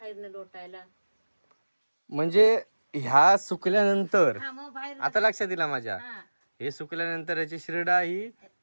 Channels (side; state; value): both; inverted; correlation -1.00